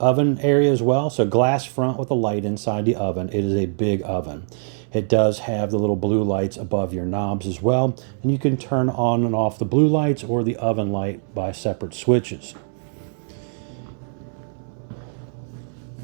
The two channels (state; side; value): silent; left; 64 dB below the other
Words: area as well. So glass front with a light inside the oven. It is a big oven. It does have the little blue lights above your knobs as well. And you can turn on and off the blue lights or the oven light by separate switches.